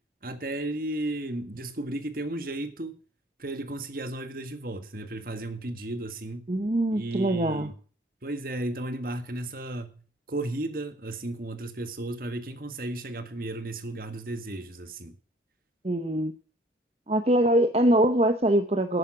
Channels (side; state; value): both; normal; correlation 0.56